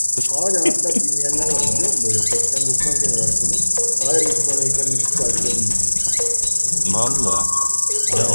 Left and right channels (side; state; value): both; inverted; correlation -1.00